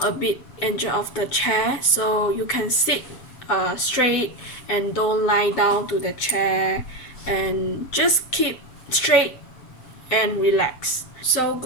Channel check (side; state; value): right; late; 7.8 ms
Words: a bit edge of the chair, so you can sit straight and don't lie down to the chair, and just keep straight and relax. So